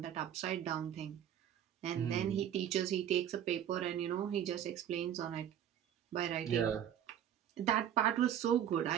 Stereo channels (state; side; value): quieter; left; 10.2 dB